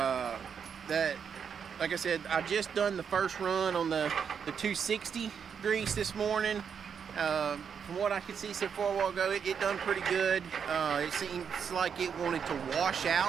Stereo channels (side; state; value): left; quieter; 7.0 dB